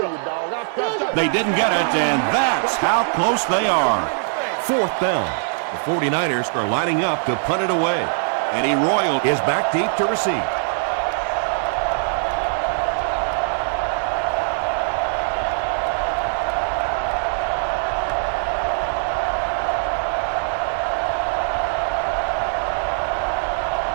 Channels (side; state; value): left; silent; 61 dB below the other